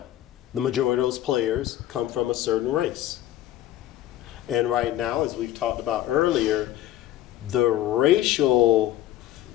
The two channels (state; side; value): quieter; right; 13.3 dB